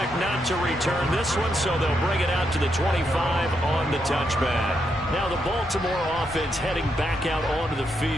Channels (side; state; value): both; normal; correlation 0.80